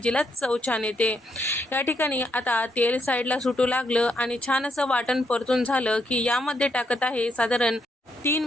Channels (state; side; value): normal; both; correlation 0.77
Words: चव छान येते. या ठिकाणी आता तेल साईडला सुटू लागलं आणि छान असं वाटण परतून झालं की यामध्ये टाकत आहे साधारण 3